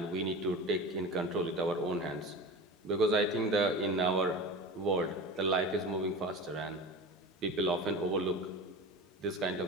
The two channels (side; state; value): both; normal; correlation 0.31